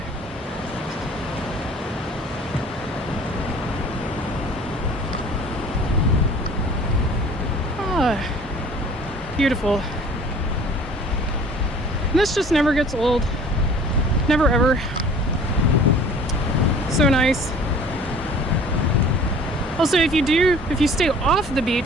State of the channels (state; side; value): normal; both; correlation 0.48